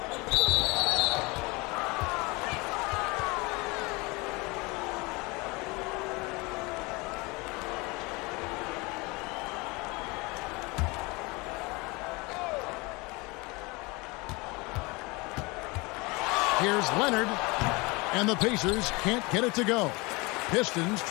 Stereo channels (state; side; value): quieter; right; 25.7 dB